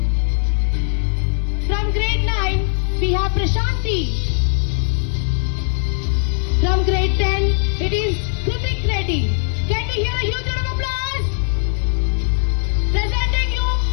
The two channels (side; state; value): right; silent; 60 dB below the other